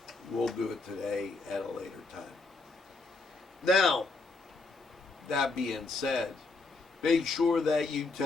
we'll do it today at a later time. Now, that being said, make sure that you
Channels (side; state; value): right; quieter; 3.7 dB